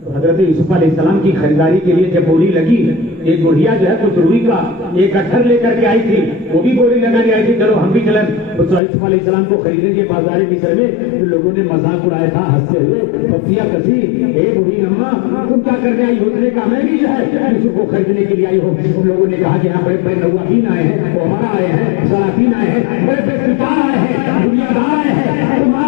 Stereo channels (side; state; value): right; drops out; at 8.8 s